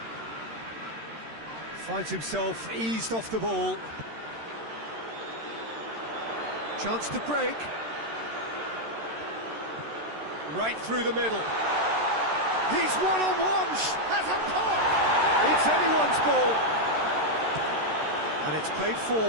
Finds himself eased off the ball. Chance to break. Right through the middle. He's one-on-one, has a pop! It's anyone's ball. And it's played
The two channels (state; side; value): late; left; 13 ms